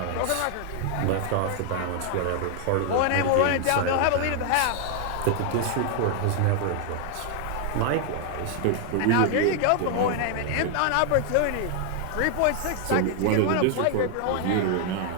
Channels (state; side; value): different; both; correlation 0.00